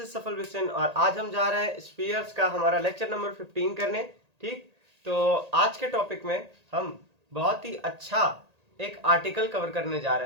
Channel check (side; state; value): left; late; 1.8 ms